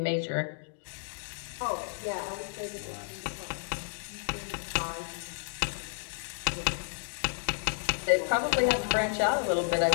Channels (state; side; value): silent; right; 57 dB below the other